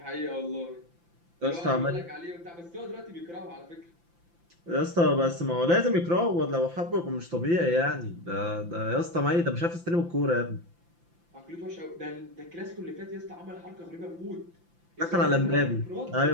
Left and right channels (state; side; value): late; left; 5.8 ms